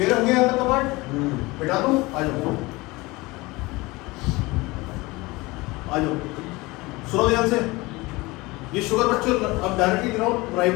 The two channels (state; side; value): quieter; right; 22.4 dB